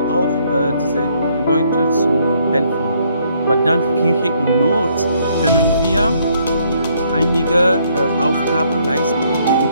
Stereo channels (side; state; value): both; inverted; correlation -0.68